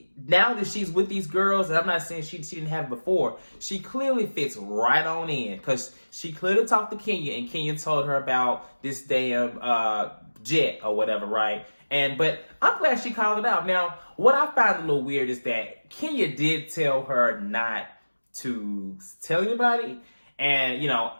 now that she's with these girls, and I'm not saying she didn't have it before, she clearly fits right on in, because she clearly talked to Kenya, and Kenya told her about this damn jet or whatever, right? But I'm glad she called it out. Now, what I find a little weird is that Kenya did tell her not to tell anybody, and, you know,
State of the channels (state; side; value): inverted; both; correlation -1.00